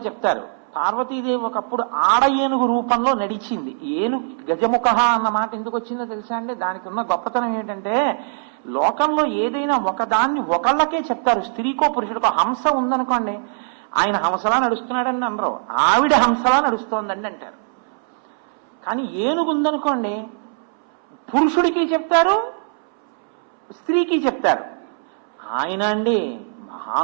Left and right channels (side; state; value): left; silent; 65 dB below the other